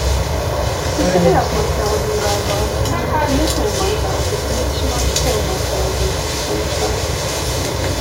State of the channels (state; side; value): identical; both; correlation 1.00